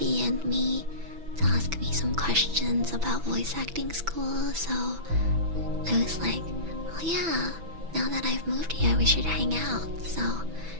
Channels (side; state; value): left; late; 6.1 ms